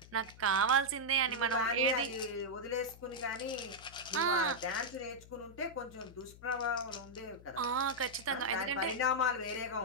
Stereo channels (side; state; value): left; noise; hum, 19 dB below the sound